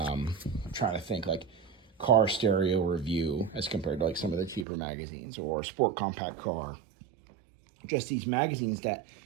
trying to think, like Car Stereo Review as compared to like some of the cheaper magazines, or Sport Compact Car. Just these magazines that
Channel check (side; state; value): left; drops out; at 4.7 s